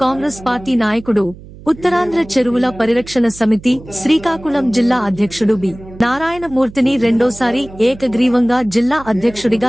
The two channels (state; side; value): noise; right; hum, 18 dB below the sound